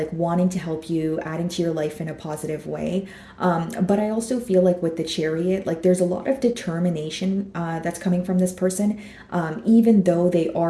wanting to help you, adding to your life in a positive way. But I also feel like with the Chariot, like there's a lot of determination that's coming from this person, even though they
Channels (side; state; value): both; identical; correlation 1.00